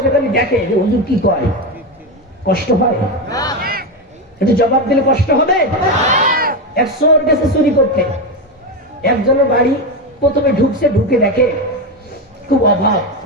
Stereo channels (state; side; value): normal; both; correlation 0.13